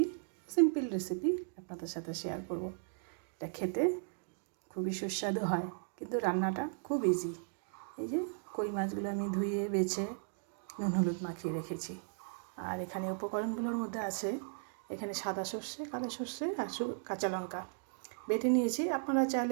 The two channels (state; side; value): silent; left; digital silence